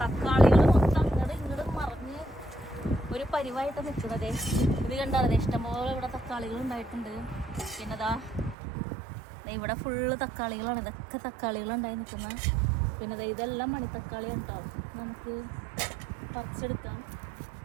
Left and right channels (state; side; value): drops out; left; at 8.6 s